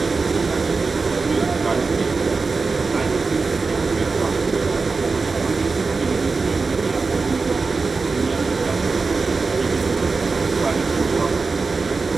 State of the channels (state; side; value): quieter; left; 4.3 dB